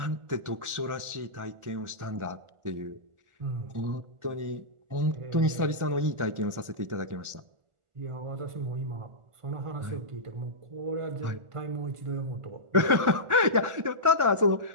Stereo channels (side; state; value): left; late; 1.4 ms